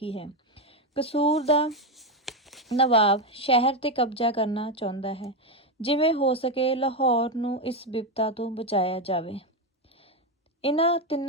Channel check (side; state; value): both; normal; correlation 0.09